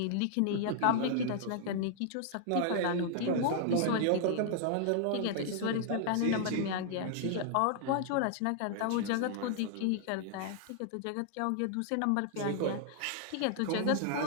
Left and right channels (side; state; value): both; different; correlation -0.01